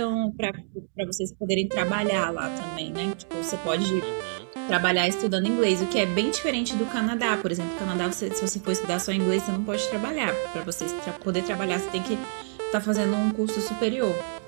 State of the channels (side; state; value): left; silent; digital silence